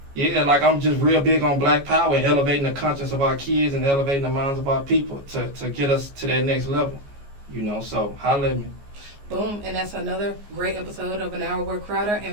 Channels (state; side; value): late; left; 14 ms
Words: Yeah, like I'm just real big on Black Power and elevating the conscience of our kids and elevating the minds of our people to get us to that next level. You know, so holla at me. Boom, and that's another great episode of An Hour with Crowder,